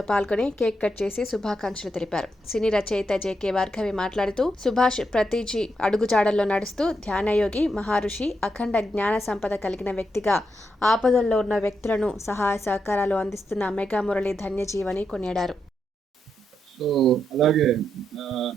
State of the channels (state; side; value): normal; both; correlation 0.82